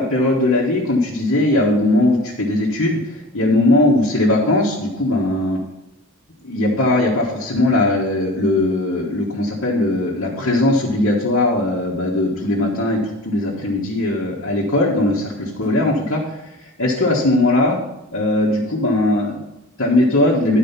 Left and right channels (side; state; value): both; normal; correlation 0.39